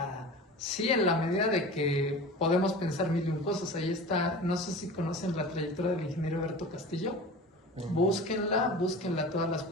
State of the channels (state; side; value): normal; both; correlation 0.36